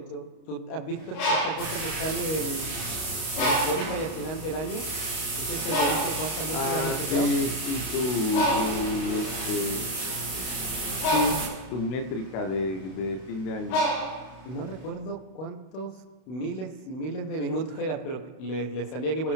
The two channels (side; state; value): right; late; 32 ms